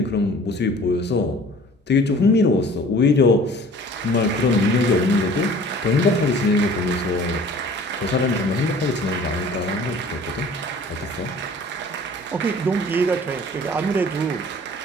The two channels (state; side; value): normal; both; correlation 0.48